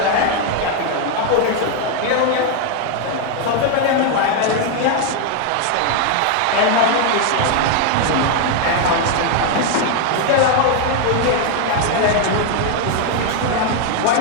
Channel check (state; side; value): different; both; correlation 0.01